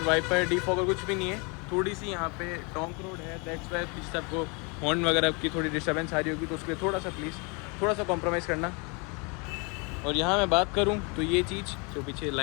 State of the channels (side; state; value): right; quieter; 31.6 dB